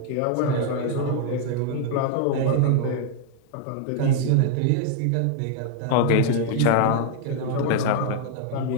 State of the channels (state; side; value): different; both; correlation 0.00